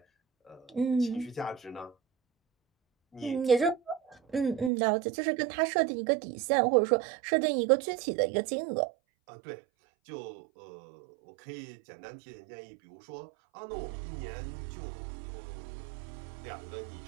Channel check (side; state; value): left; drops out; at 4.7 s